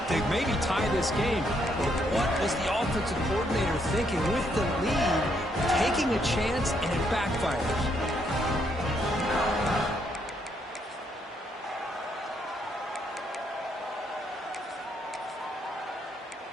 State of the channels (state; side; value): normal; both; correlation 0.74